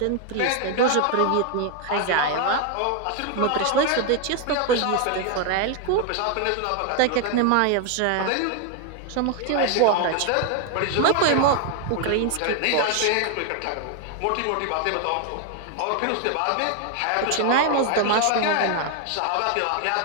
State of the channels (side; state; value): both; different; correlation 0.01